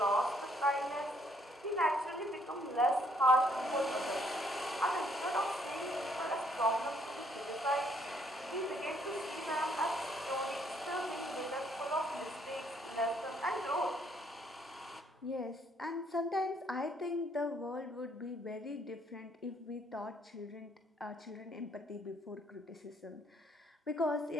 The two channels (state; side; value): normal; both; correlation 0.67